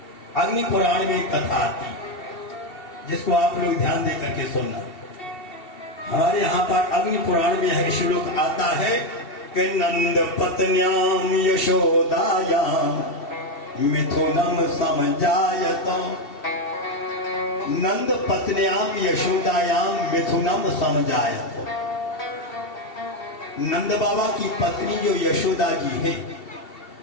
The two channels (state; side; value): late; right; 2.7 ms